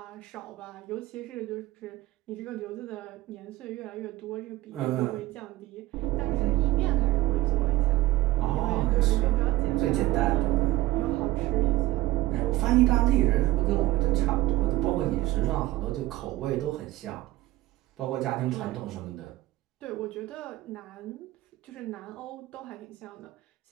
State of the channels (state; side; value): quieter; left; 17.2 dB